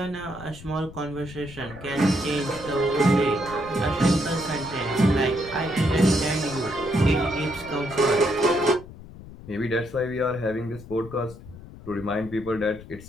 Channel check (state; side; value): noise; left; rumble, 16 dB below the sound